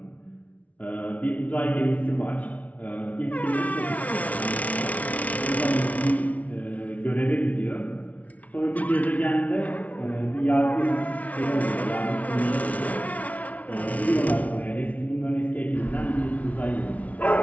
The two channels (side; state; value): right; late; 0.069 ms